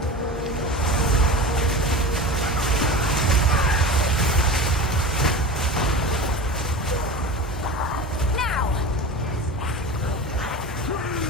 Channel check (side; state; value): both; normal; correlation 0.31